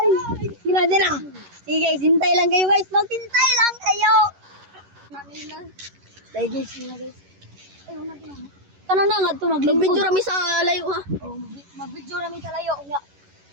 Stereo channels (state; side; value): late; left; 11 ms